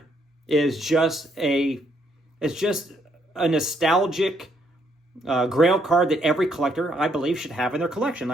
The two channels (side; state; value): both; normal; correlation 0.72